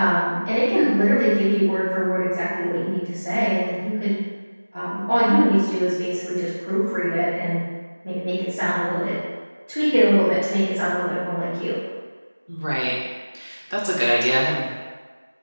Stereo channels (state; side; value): inverted; both; correlation -1.00